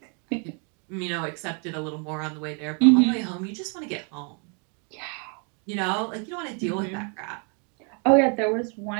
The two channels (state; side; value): quieter; left; 37.9 dB